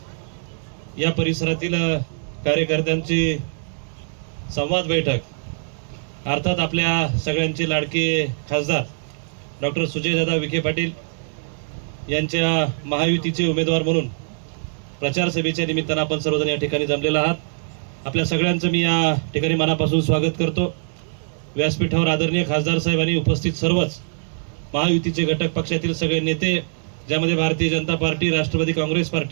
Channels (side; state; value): left; silent; digital silence